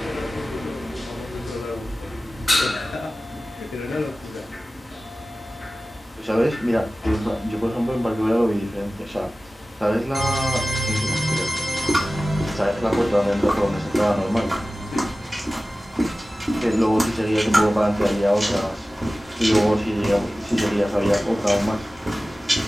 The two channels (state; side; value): normal; both; correlation 0.96